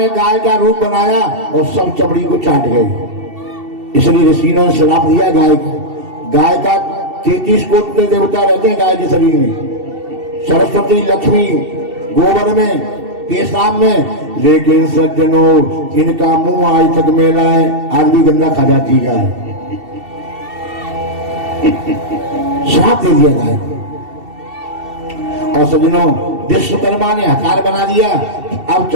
गाय का रूप बनाया और सब चमड़ी को चाट गए। इसलिए ऋषियों ने श्राप दिया गाय का। गाय का 33 कोटि देवता रहते हैं गाय के शरीर में, सरस्वती लक्ष्मी गोबर में, पेशाब में, लेकिन सज्जनों इनका मुंह आज तक मेला है, आज भी गंदा खा जाती गाय। श्राप दे दिया गाय। और सज्जनों विश्वकर्मा ने हथियार बना दिया। अब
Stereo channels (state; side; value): late; left; 2.7 ms